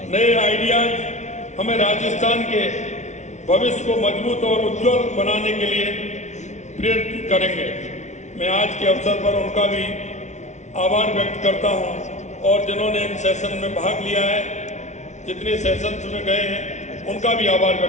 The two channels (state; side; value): late; right; 0.34 ms